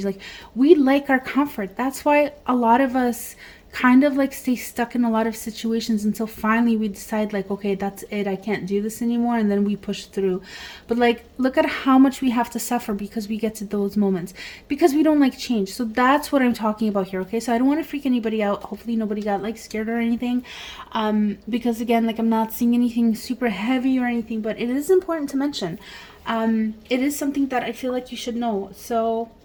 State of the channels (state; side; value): identical; both; correlation 1.00